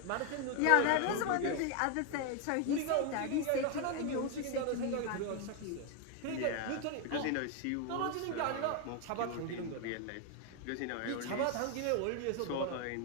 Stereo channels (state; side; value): different; both; correlation 0.01